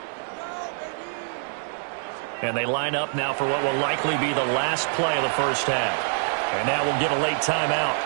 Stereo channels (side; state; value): left; silent; digital silence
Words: And they line up now for what will likely be the last play of the first half. And now we'll get a late timeout